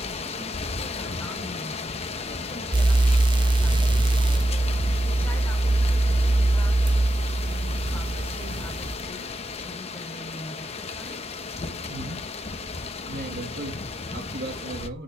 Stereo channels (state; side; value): normal; both; correlation 0.88